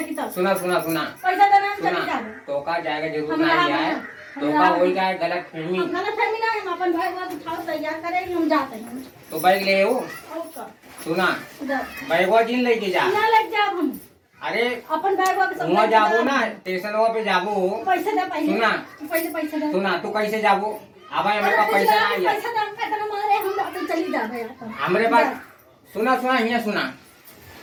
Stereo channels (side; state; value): both; identical; correlation 1.00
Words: की सुना सुना सुना पैसा देना हम चली सुना जावे तो का जाएगा जरूर हम नहीं रहा- आए हम तो का रहा- हो जाए गलत फहमी हम गलत फहमी ना हम अपन भाई बात उठाओ तैयार करेंगे हम जाते हैं तो बैग ले आओ ओके सुना जा बैगवा जिन लेके जा ना लग जाओ हम अरे अपन बैग वापस वहाँ जाबो ना स्टेशन पे जाबो पैसा दे पैसा सुना पहले पैसा दे सुना तू कैसे जाबो अब हमारे पास पैसा नहीं है पैसा दे हम कहते मारे हम जाते चली जावे अपन हमारे पास सुना सुना यहाँ सुना